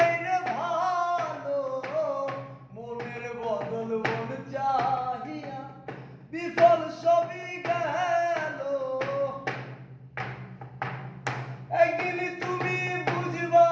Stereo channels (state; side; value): identical; both; correlation 1.00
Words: রে ভালো, মনের বদল মন চাহিয়া বিফল সবই গেল। একদিন তুমি বুঝবা